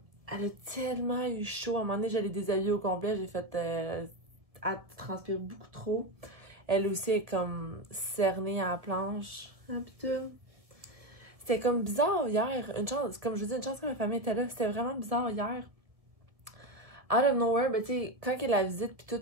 elle a tellement eu chaud. À un moment donné, j'allais déshabiller au complet, j'ai fait... elle transpire beaucoup trop. Elle aussi est comme cernée à la planche. Ah putain. C'était comme bizarre hier. Une chance, comme je vous dis, une chance que ma famille était là. C'était vraiment bizarre hier. Out of nowhere, ben tu sais, quand elle a la visite puis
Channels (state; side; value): late; left; 1.5 ms